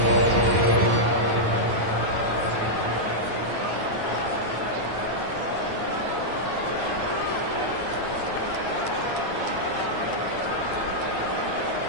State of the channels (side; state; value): left; late; 9.2 ms